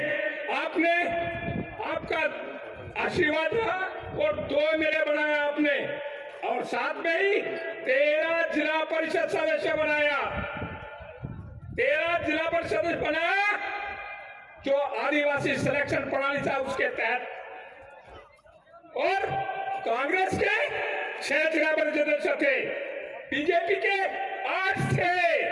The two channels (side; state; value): both; identical; correlation 1.00